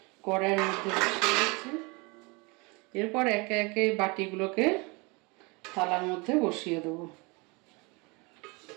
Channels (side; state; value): left; quieter; 28.0 dB